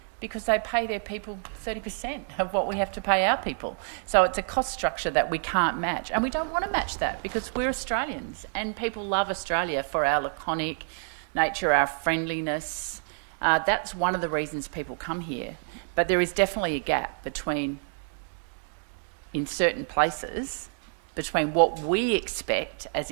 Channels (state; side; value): silent; left; digital silence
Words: because they pay their people 30% of what we have to pay our people. So it's a cost structure that we can't match, and we don't want to match that because we're Australians and people love Australia for our laconic nature, our friendliness. That's one of the reasons people come here. But there is definitely a gap in certain places, between what we expect as